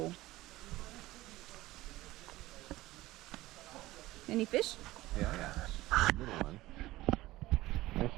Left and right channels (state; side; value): quieter; left; 17.7 dB